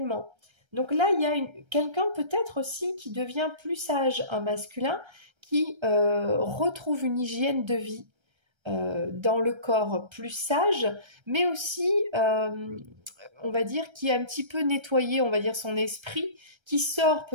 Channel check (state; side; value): late; left; 1.3 ms